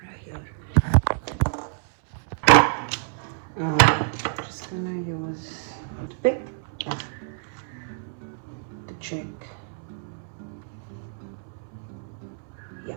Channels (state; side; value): silent; left; 60 dB below the other